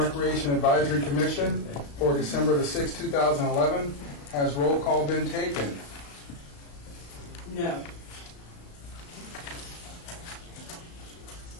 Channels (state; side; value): late; right; 35 ms